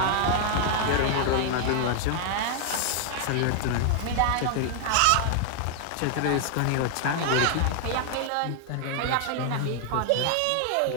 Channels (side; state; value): both; different; correlation 0.00